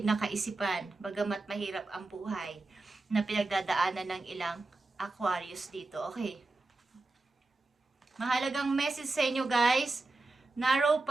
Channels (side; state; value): left; quieter; 3.2 dB